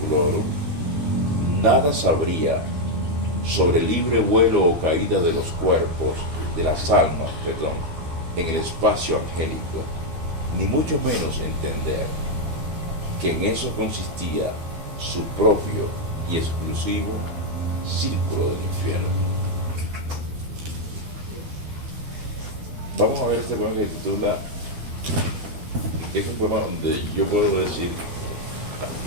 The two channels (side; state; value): left; late; 12 ms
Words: nada sabría sobre el libre vuelo o caída de los cuerpos, de las almas, en el espacio angélico, ni mucho menos entender que en eso consistía su propio y exclusivo círculo del infierno. Vamos a ver este poema que se titula, que es un poema donde yo puedo decir,